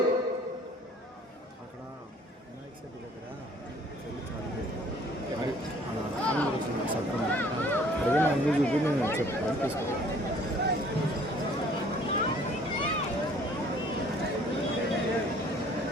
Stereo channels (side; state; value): both; normal; correlation 0.56